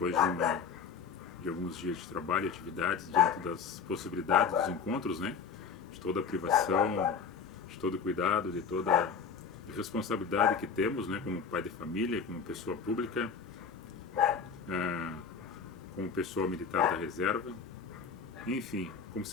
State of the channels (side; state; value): right; quieter; 6.1 dB